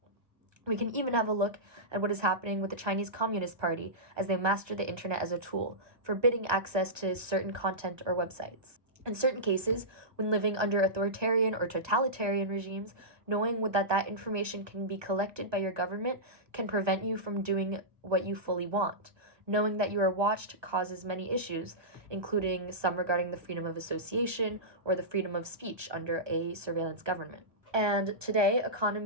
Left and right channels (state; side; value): late; left; 1.3 ms